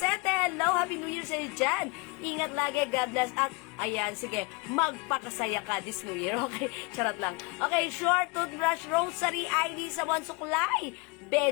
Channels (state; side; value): quieter; right; 29.1 dB